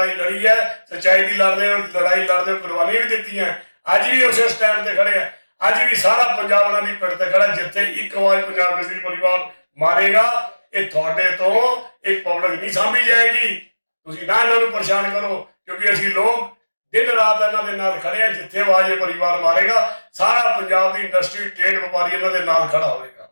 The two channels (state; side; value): inverted; both; correlation -1.00